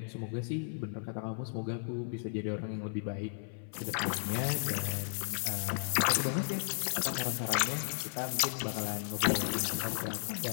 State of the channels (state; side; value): silent; right; 55 dB below the other